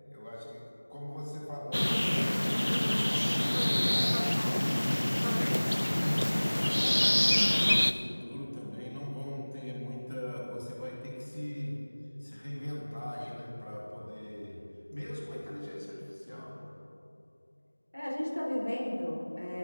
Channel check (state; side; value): inverted; both; correlation -1.00